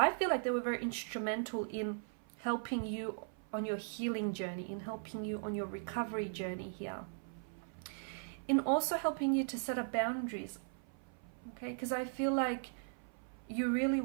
feel like they were very instrumental in helping you on your healing journey, in helping you on your recovery journey here, in also helping you to set up boundaries, okay? Because I feel like you really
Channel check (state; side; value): silent; left; 52 dB below the other